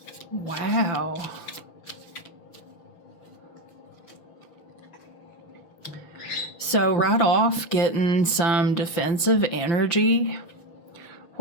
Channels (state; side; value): late; right; 5.9 ms